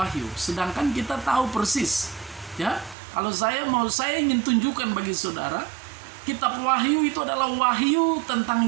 Sedangkan kita tahu persis, ya, kalau saya ingin tunjukkan bagi saudara, kitab Wahyu itu adalah wahyu tentang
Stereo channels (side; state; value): left; drops out; at 3.0 s